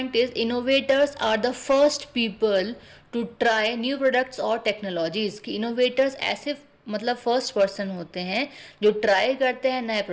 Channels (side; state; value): both; identical; correlation 1.00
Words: is innovators are the first people to try new products और टेक्नोलॉजीज। कि इनोवेटर्स ऐसे मतलब फर्स्ट पर्सन होते हैं जो ट्राई करते हैं नए